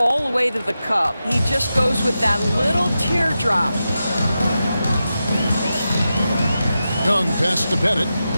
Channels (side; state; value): both; inverted; correlation -0.90